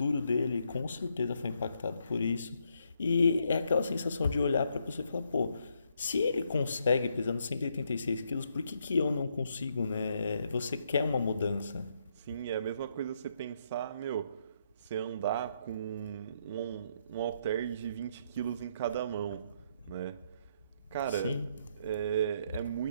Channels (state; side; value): inverted; both; correlation -0.75